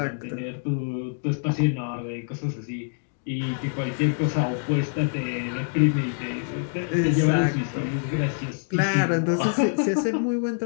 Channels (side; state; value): right; silent; digital silence